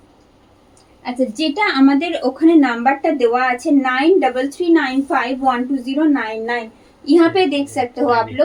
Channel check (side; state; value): both; identical; correlation 1.00